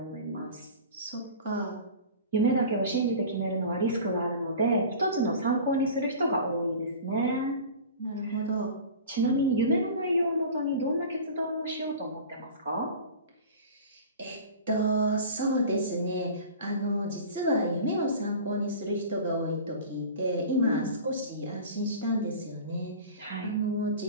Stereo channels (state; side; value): inverted; both; correlation -0.38